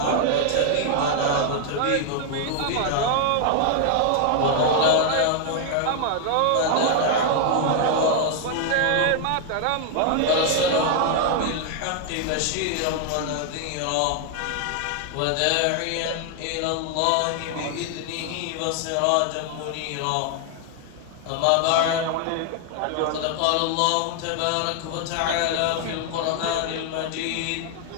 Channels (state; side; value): different; both; correlation 0.00